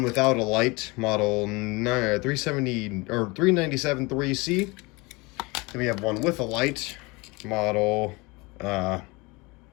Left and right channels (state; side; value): quieter; right; 25.5 dB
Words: without a light, model 370 or 397-3C. Then we have one with a light, model, long